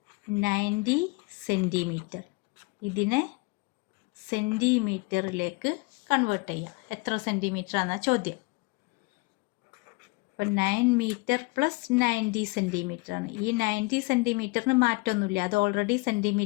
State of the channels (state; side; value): quieter; right; 26.6 dB